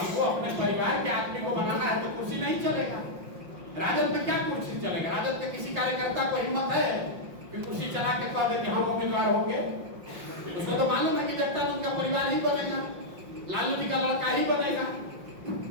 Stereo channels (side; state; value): left; late; 5.6 ms